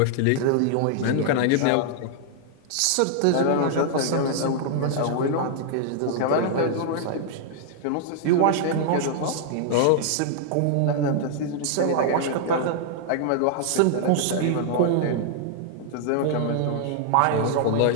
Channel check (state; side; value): different; both; correlation -0.01